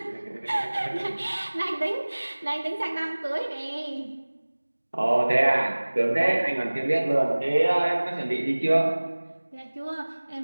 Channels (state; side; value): inverted; both; correlation -1.00